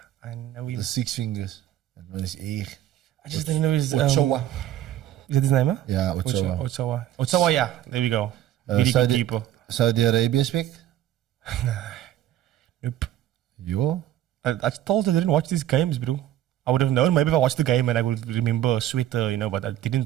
I know him. the six fingers. That one is echt. I just don't know his... Ochoa. Is that his name, huh? Yeah, Ochoa. Ochoa, yeah. There we go. Really good keeper. Saudi Arabia speak? Nope. Yo. I told you I didn't watch these games, bro. I would have known maybe if I watched the game and I would remember a sweater, but I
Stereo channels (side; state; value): left; quieter; 12.3 dB